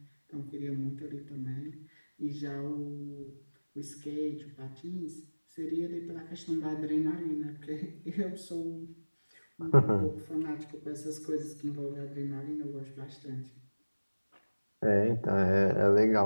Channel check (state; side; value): inverted; both; correlation -1.00